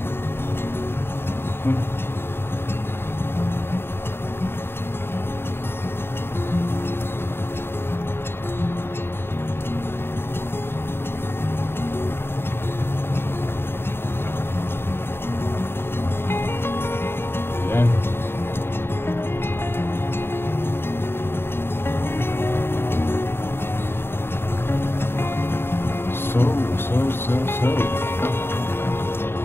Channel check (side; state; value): right; late; 0.11 ms